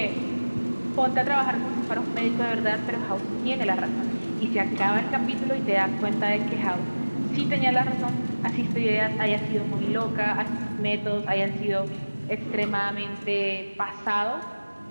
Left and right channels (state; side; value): inverted; both; correlation -1.00